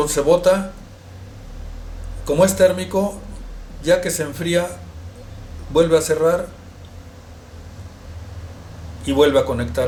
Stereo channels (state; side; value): identical; both; correlation 1.00